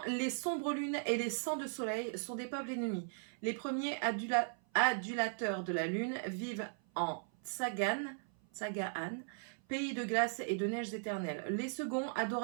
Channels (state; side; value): silent; left; 53 dB below the other